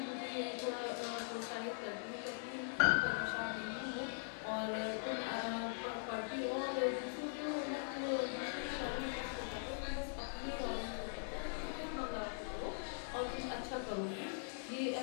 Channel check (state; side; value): silent; right; digital silence